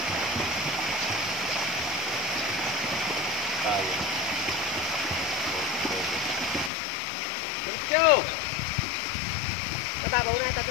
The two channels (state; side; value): drops out; right; at 6.7 s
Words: Tayo. Let's go! Mababaw na ito.